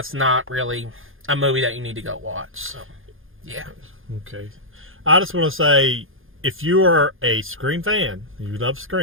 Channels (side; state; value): left; late; 0.59 ms